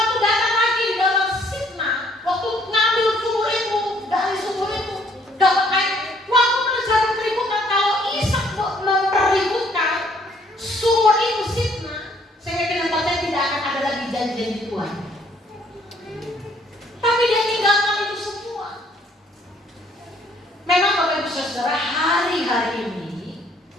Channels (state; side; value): normal; both; correlation 0.63